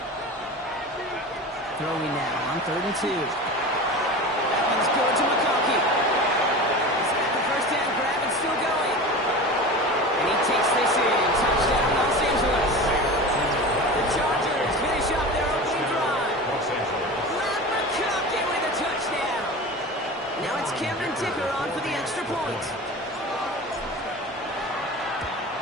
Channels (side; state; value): both; normal; correlation 0.32